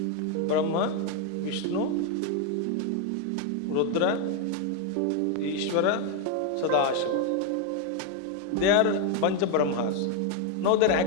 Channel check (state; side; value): different; both; correlation 0.01